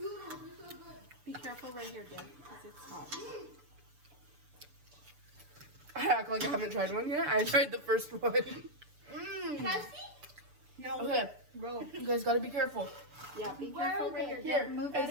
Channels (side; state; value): left; late; 6.9 ms